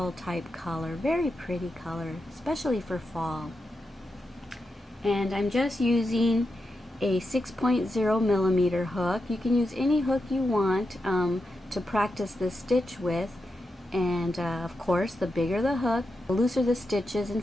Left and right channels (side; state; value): both; normal; correlation 0.88